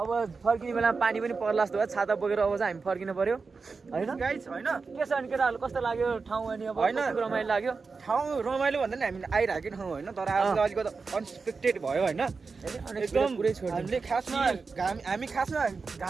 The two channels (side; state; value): left; quieter; 4.6 dB